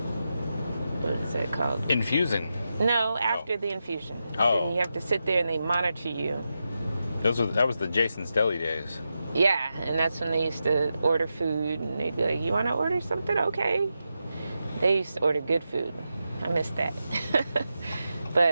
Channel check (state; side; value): inverted; both; correlation -0.88